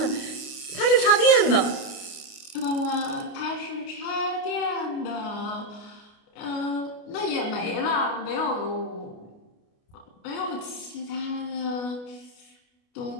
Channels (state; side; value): late; right; 29 ms